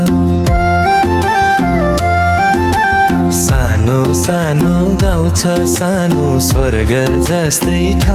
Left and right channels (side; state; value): both; identical; correlation 1.00